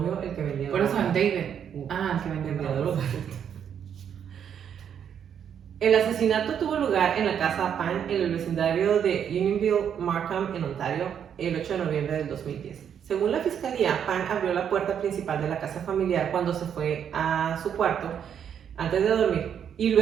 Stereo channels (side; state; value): left; quieter; 8.4 dB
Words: el que vendía Por eso droga. el David. El que vendía droga. El asesinato tuvo lugar en la casa Pan en el vecindario de Unionville, Markham, en Ontario, el 8 de noviembre del 2010. Según la fiscalía, Pan abrió la puerta principal de la casa familiar cuando se fue a su cuarto antes de dormir y